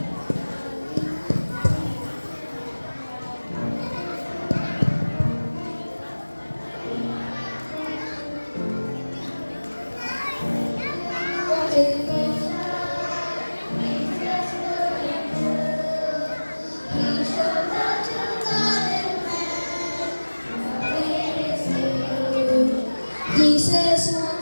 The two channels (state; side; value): inverted; both; correlation -1.00